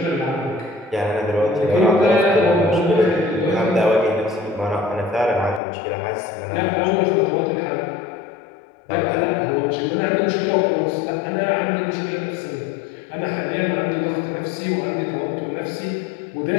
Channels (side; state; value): right; drops out; at 5.6 s